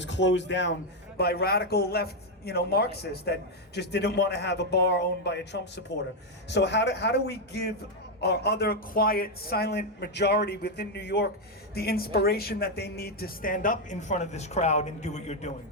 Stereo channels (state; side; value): normal; both; correlation 0.02